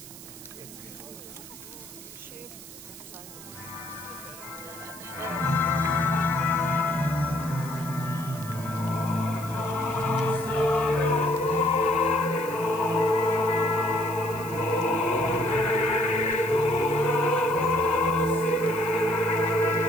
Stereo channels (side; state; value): right; noise; hiss, 16 dB below the sound